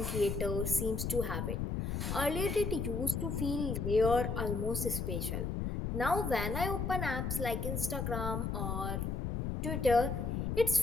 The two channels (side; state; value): left; noise; rumble, 1 dB below the sound